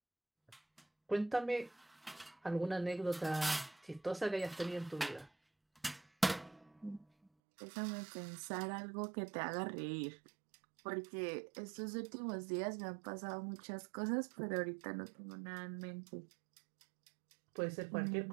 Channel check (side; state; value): left; drops out; at 7.3 s